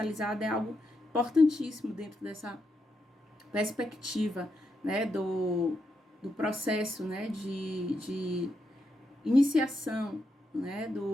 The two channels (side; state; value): both; normal; correlation 0.83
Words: é algo importantíssimo dentro dessa perspectiva, do processo, de iniciação,